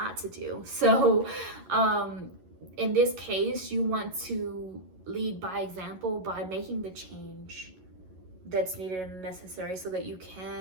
to do. So in this case, you want to lead by example by making the change that's needed and necessary, so that you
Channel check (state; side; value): late; left; 11 ms